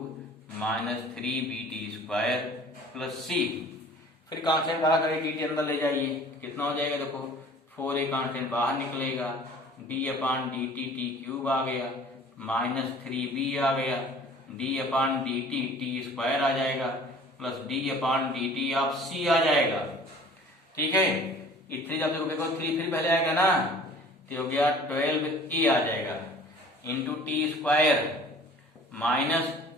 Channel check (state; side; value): normal; both; correlation 0.48